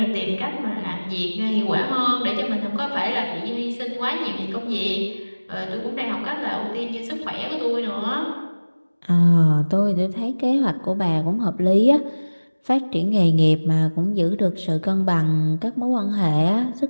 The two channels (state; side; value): inverted; both; correlation -1.00